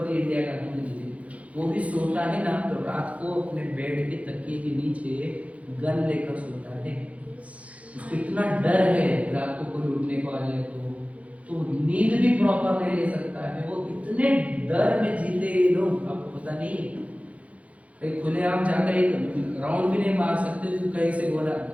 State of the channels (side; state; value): left; late; 0.065 ms